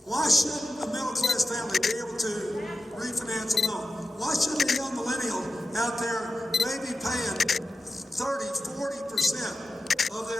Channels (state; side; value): normal; both; correlation 0.91